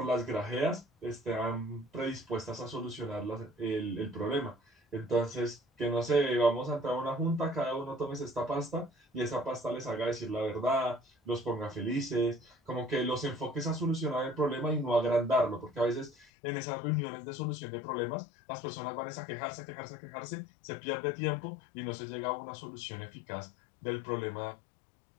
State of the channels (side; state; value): right; drops out; at 16.2 s